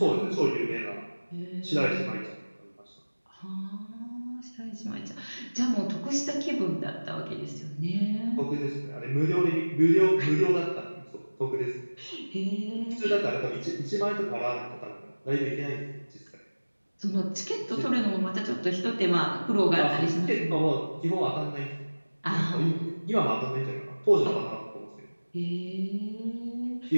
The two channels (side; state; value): both; inverted; correlation -1.00